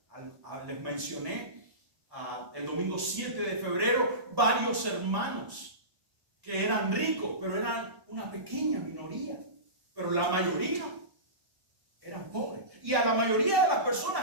Les mencioné el domingo 7 de febrero varios hermanos que eran ricos, pero eran una pequeña minoría. Pero la mayoría eran pobres. Y a la mayoría de las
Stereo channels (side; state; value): left; late; 1.0 ms